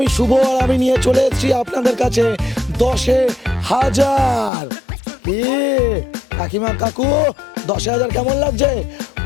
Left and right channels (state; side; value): drops out; right; at 4.5 s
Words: শুভ আর আমি নিয়ে চলে এসেছি আপনাদের কাছে 10,000। কাকিমা কাকু 10,000 কেমন লাগছে?